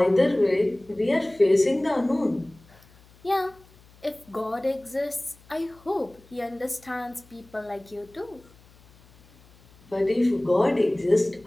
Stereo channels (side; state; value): left; noise; hum, 27 dB below the sound